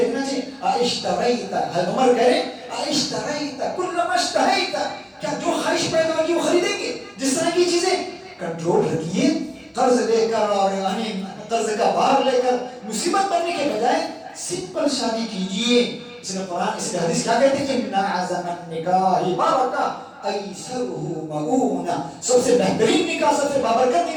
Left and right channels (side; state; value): both; identical; correlation 1.00